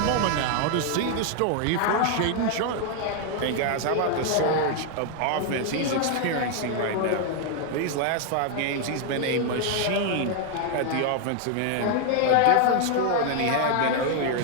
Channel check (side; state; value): both; different; correlation 0.01